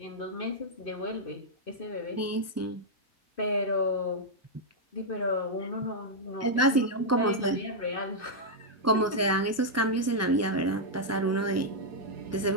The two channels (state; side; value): normal; both; correlation -0.03